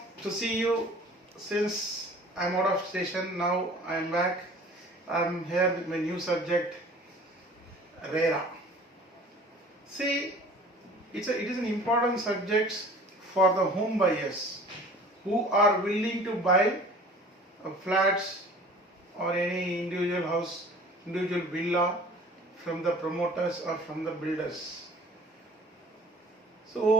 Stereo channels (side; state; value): both; normal; correlation 0.47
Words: to see you since I'm out of station. Now I'm back. I'm here with my new subject, RERA. See, it is an important subject for the home buyers who are willing to buy flats or any individual house, individual villa from the promoters or from the builders.